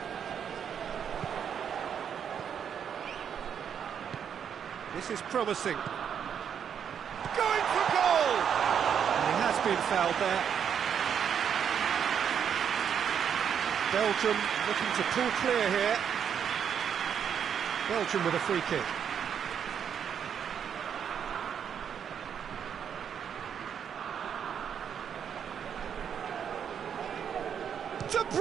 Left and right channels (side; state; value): left; quieter; 8.0 dB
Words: This is promising. Going for goal! And he has been fouled there. Belgium looking to pull clear here. Belgium with a free kick. De